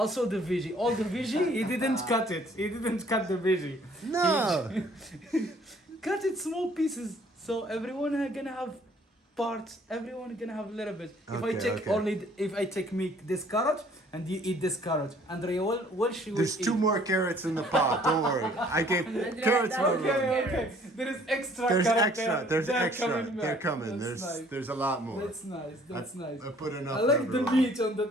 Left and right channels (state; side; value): normal; both; correlation 0.58